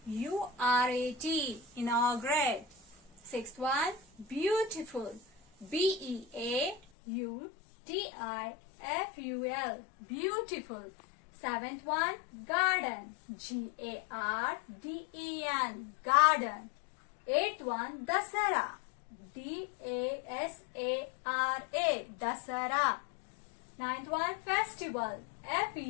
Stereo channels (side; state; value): right; drops out; at 6.8 s